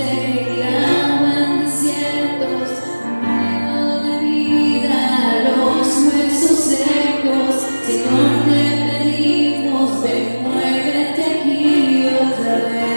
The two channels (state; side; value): inverted; both; correlation -1.00